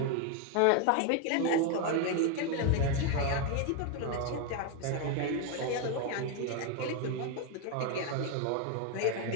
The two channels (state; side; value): different; both; correlation 0.01